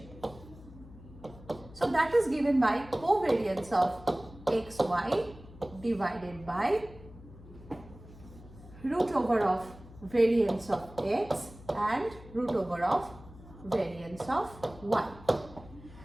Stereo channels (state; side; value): noise; left; hum, 19 dB below the sound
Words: So that is given by covariance of xy divided by root over of variance of x and root over of variance of y.